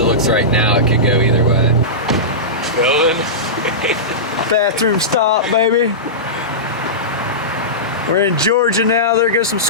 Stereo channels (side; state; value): both; normal; correlation -0.17